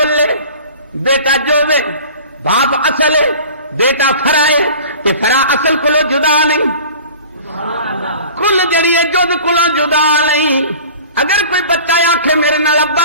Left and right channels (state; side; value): inverted; both; correlation -0.42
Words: لے بیٹا جو وے باپ اصل ہے بیٹا فرا ہے کہ فرا اصل کولو جدا نہیں کل جڑی ہے جد کولو جدا نہیں. اگر کوئی بچہ آکھے میرے نال